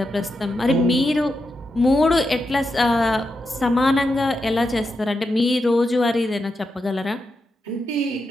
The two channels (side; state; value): both; normal; correlation 0.86